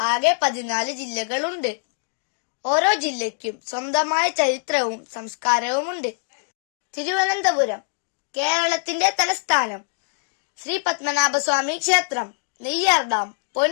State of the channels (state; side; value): silent; right; digital silence